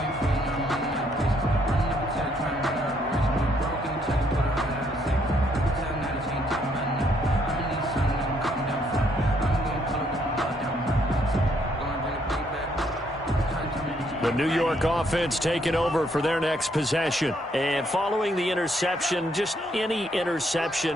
The New York offense taking over for their next possession. And following the interception, just any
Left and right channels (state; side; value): normal; both; correlation 0.71